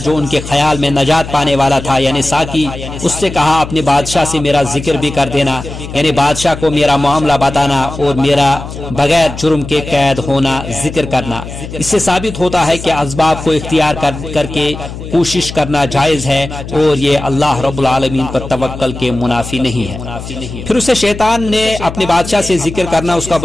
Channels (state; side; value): noise; left; hum, 10 dB below the sound